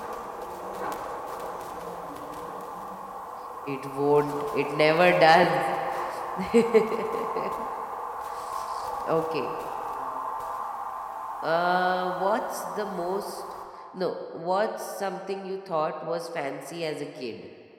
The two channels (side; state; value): both; identical; correlation 1.00